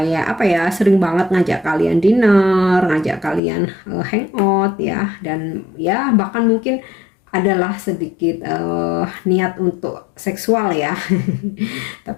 apa ya, sering banget ngajak kalian dinner, ngajak kalian hangout ya. Dan ya bahkan mungkin adalah sedikit niat untuk seksual ya.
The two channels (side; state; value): right; drops out; at 3.4 s